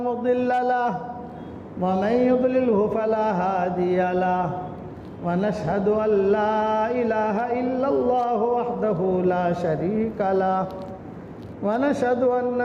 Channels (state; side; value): identical; both; correlation 1.00